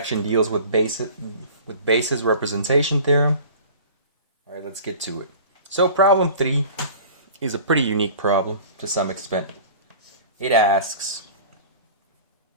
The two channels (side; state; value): both; inverted; correlation -0.42